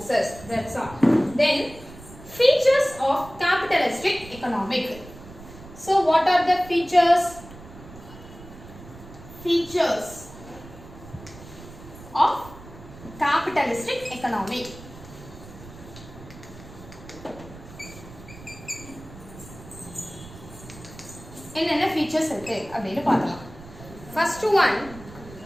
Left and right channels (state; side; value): noise; right; rumble, 17 dB below the sound